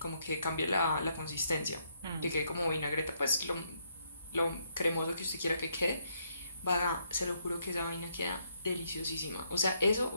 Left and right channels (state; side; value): inverted; both; correlation -0.74